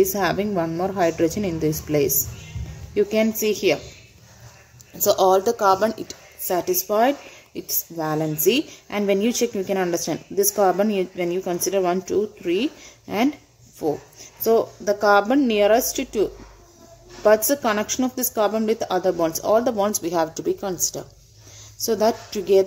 having one more hydrogen in this place. You can see here. So all the carbon it satisfied its valency, and when you check you can understand this carbon when you consider 1, 2, 3 and 4. So the carbon nearest to what's the connection of this carbon with other bonds? All the bonds we have to be considered. So that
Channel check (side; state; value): both; identical; correlation 1.00